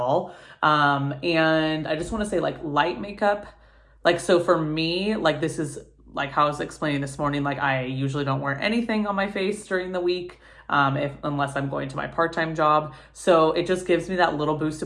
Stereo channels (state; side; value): identical; both; correlation 1.00